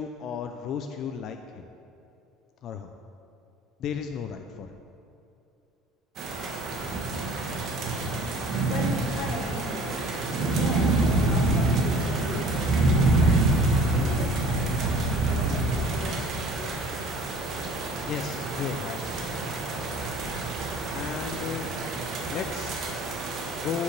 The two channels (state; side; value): normal; both; correlation 0.48